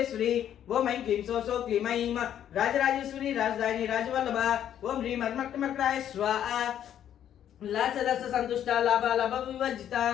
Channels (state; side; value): quieter; right; 10.3 dB